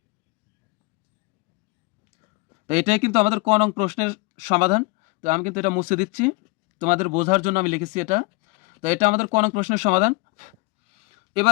তো এটাই কিন্তু আমাদের ক নং প্রশ্নের সমাধান। তো আমি কিন্তু এটা মুছে দিচ্ছি, তোমাদের বোঝার জন্য আমি লিখেছি এটা। তো এটা আমাদের ক নং প্রশ্নের সমাধান।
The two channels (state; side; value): quieter; right; 25.8 dB